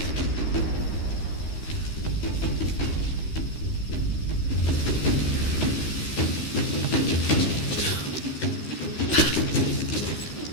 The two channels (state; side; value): late; right; 13 ms